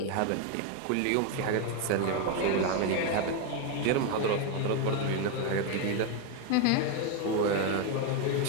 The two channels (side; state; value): both; different; correlation 0.02